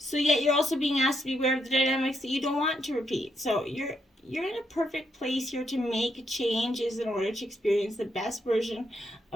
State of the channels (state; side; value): normal; both; correlation 0.78